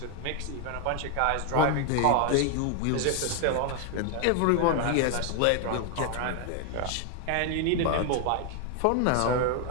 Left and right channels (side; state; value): both; different; correlation 0.01